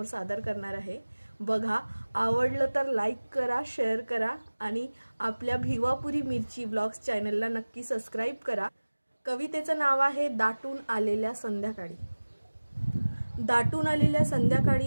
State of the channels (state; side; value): inverted; both; correlation -1.00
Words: सादर करणार आहे। बघा, आवडलं तर लाईक करा, शेअर करा आणि आपल्या भिवापुरी मिरची व्लॉग्स चॅनलला नक्की सबस्क्राइब करा। कवितेचं नाव आहे दाटून आलेल्या संध्याकाळी। दाटून आलेल्या